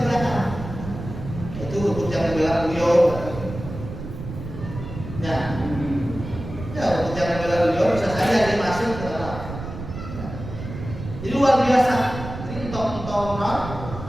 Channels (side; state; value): right; noise; rumble, 9 dB below the sound